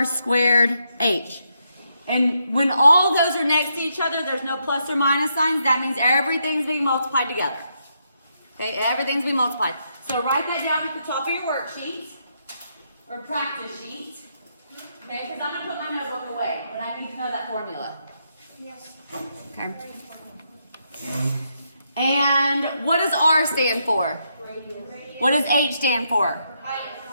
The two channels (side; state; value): both; inverted; correlation -0.79